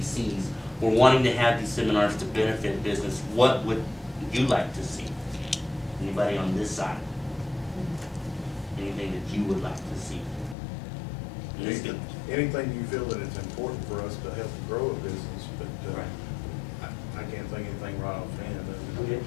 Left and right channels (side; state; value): right; drops out; at 10.6 s